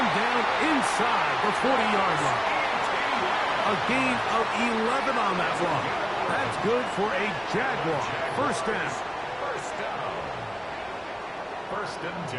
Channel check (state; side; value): identical; both; correlation 1.00